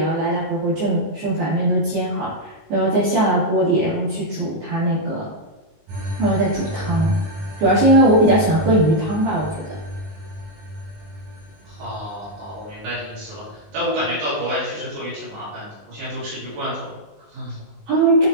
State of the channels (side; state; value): left; late; 19 ms